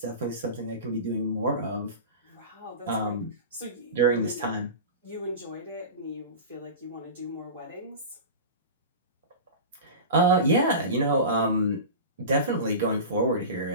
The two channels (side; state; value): both; inverted; correlation -0.30